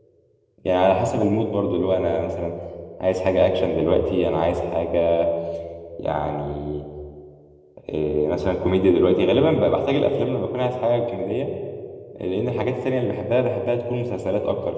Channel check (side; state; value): both; identical; correlation 1.00